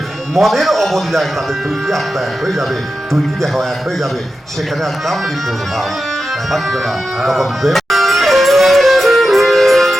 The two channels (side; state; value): both; normal; correlation 0.91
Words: মনের অবলীলায় তাদের দুইটি আত্মা এক হয়ে যাবে, দুইটি দেহ এক হয়ে যাবে, সেখানে আর কামড়ি প্রভাব থাকবে না। তখন